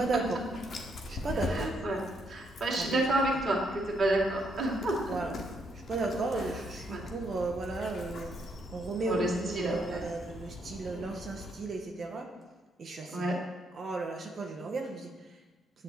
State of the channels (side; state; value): both; normal; correlation 0.74